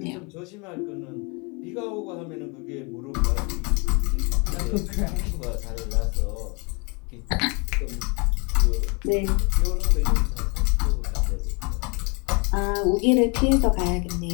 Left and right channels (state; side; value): quieter; right; 31.7 dB